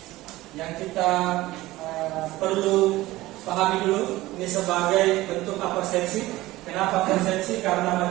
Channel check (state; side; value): quieter; left; 17.8 dB